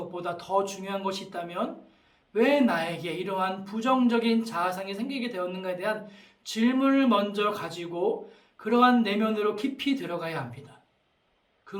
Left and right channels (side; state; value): both; identical; correlation 1.00